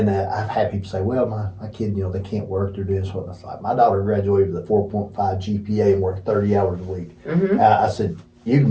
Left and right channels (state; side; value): identical; both; correlation 1.00